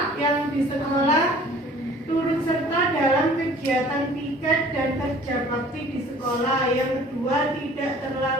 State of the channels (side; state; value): both; normal; correlation 0.50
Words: Yang di sekolah, turut serta dalam kegiatan piket dan kerja bakti di sekolah. Yang kedua, tidak